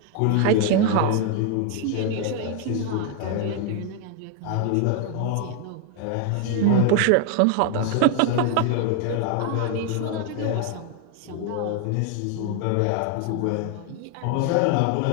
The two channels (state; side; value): different; both; correlation 0.00